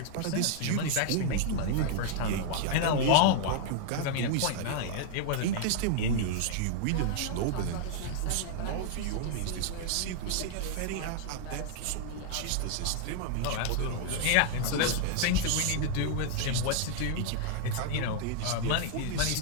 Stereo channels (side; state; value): both; different; correlation 0.00